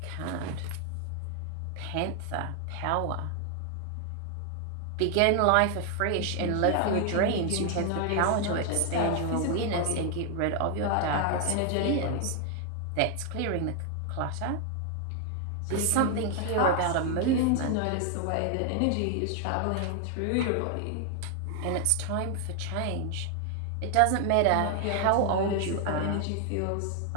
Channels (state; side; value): different; both; correlation 0.00